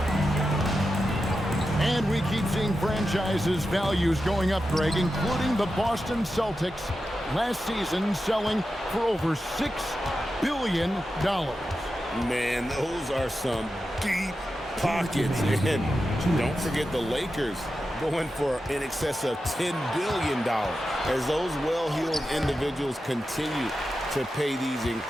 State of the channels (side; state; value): both; normal; correlation 0.90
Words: And we keep seeing franchises' values going up, Greg, including the Boston Celtics last season selling for over $6 billion. Man, those are some deep pockets. And don't forget the Lakers going for in excess of $10 billion as those well-heeled individuals continue to pay these